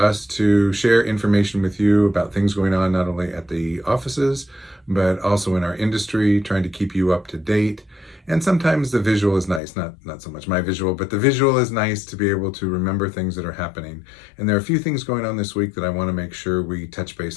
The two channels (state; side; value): drops out; right; at 9.6 s